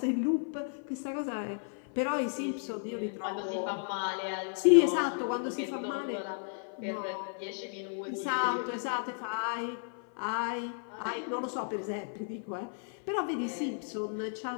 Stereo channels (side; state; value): right; silent; 55 dB below the other